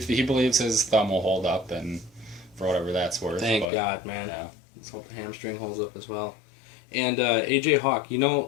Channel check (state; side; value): drops out; right; at 3.7 s